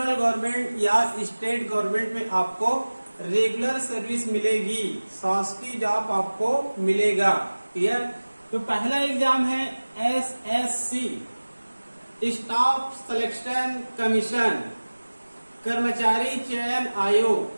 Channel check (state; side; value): inverted; both; correlation -1.00